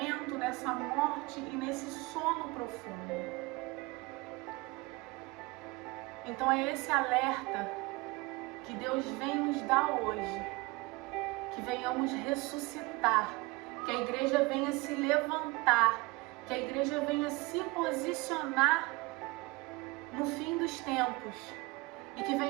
nessa morte e nesse sono profundo. Então é esse alerta que Deus vem nos dar hoje, que venhamos ressuscitar, que a igreja venha se levantar, que a igreja venha se posicionar no fim dos tempos e que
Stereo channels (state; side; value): quieter; left; 23.9 dB